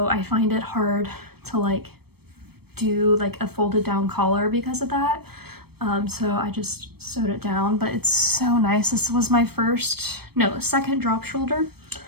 I find it hard to like do like a folded down collar because of that. So I just sewed it down, but it's so nice. This was my second drop shoulder.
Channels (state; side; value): late; left; 0.97 ms